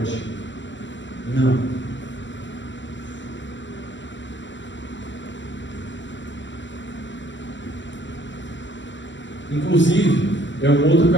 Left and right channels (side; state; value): right; late; 0.54 ms